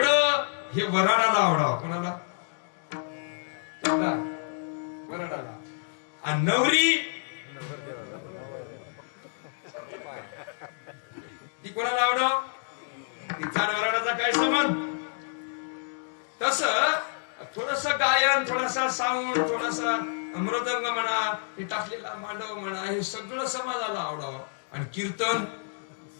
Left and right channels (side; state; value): right; silent; digital silence